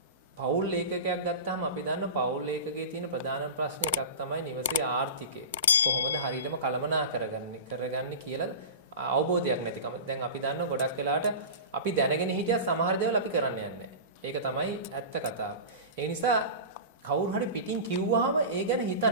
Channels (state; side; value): inverted; both; correlation -0.31